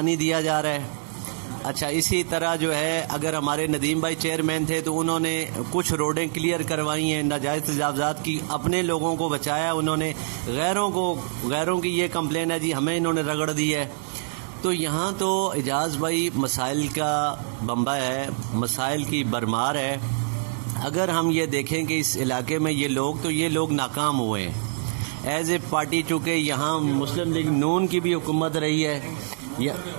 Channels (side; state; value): left; silent; digital silence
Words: दिया जा रहा है। अच्छा, इसी तरह जो है अगर हमारे नदीम भाई चेयरमैन थे तो उन्होंने कुछ रोडें क्लियर करवाई हैं, नाजायज़ तजावज़ात की, अपने लोगों को बचाया उन्होंने, गैरों की ये कंप्लेन है जी हमें इन्होंने रगड़ दी है। तो यहाँ तो एजाज भाई मसाइल का बम्बा है, मसाइल की भरमार है। अगर हम ये देखें कि इस इलाके में ये लोग नाकाम हुए हैं एज ए पार्टी, चूँकि यहाँ मुस्लिम लीग नून की भी हुकूमत रही है,